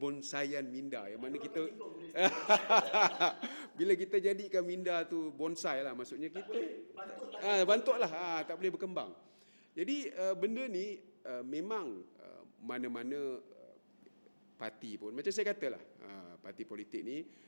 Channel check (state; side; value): inverted; both; correlation -1.00